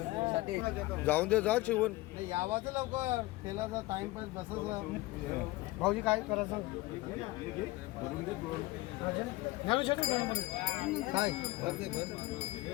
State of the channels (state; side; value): quieter; right; 19.8 dB